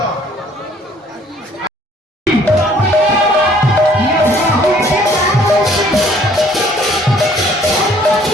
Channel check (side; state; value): both; normal; correlation 0.59